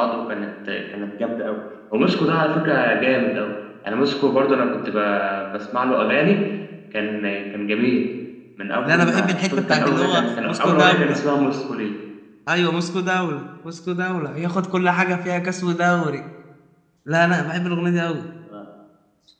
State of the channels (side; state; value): both; identical; correlation 1.00